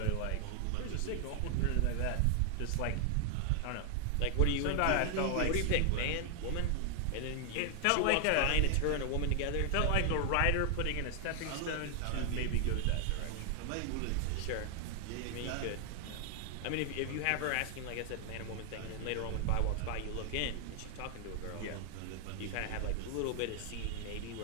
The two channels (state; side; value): different; both; correlation 0.00